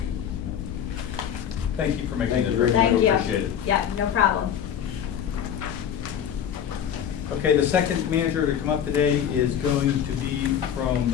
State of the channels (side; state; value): right; quieter; 9.0 dB